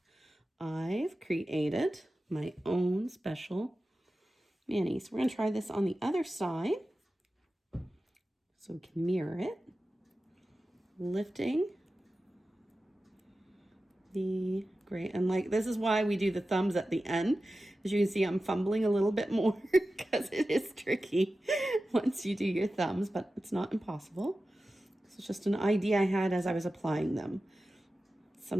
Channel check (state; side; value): normal; both; correlation 0.94